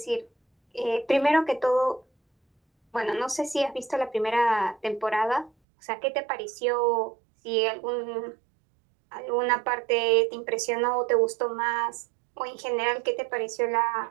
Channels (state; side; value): drops out; left; at 5.5 s